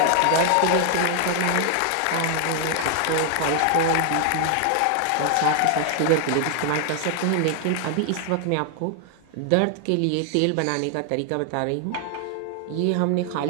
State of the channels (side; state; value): both; different; correlation 0.00